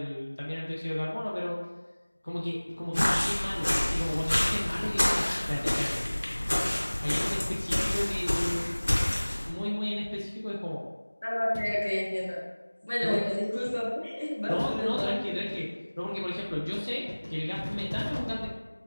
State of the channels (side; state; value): both; inverted; correlation -1.00